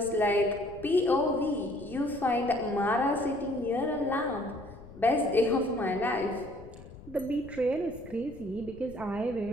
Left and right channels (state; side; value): noise; left; rumble, 18 dB below the sound